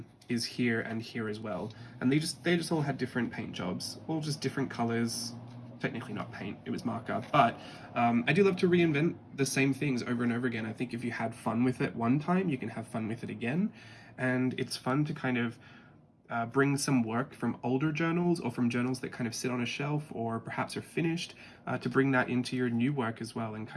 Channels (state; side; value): identical; both; correlation 1.00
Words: is here and here as well, and they just all had different paint jobs, all just different colors. Technically not paint, it was marker, but I do love to reinvent the same things over and over again. I think if you had fun with it one time, you can have fun with it again, and it's fun to kind of bring some work from older journals or from journals that kind of sit on a shelf or perhaps are finished, to bring that into your new work as well and